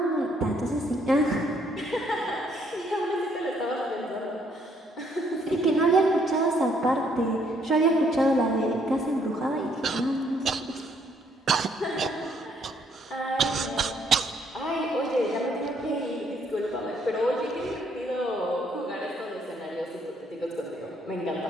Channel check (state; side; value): normal; both; correlation 0.68